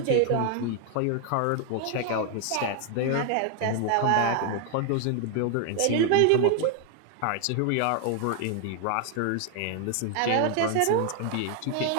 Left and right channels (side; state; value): both; different; correlation 0.00